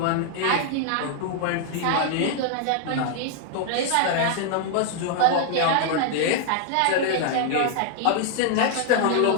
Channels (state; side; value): different; both; correlation 0.00